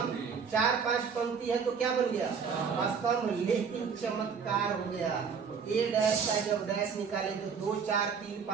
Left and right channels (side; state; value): left; quieter; 6.2 dB